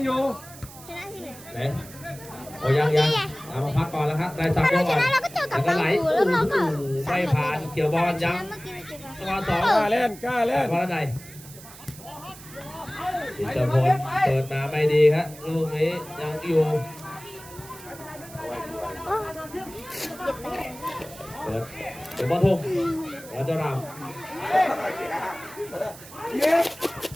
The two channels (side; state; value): right; noise; hiss, 18 dB below the sound